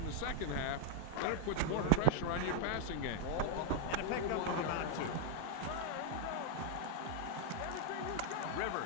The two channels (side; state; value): both; different; correlation -0.01